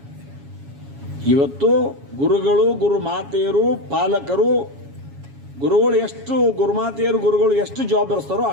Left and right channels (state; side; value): late; left; 7.2 ms